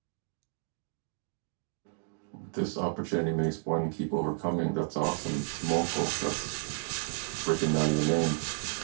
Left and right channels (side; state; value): left; silent; digital silence